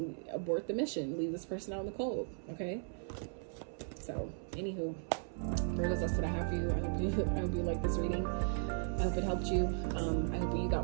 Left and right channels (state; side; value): silent; left; 53 dB below the other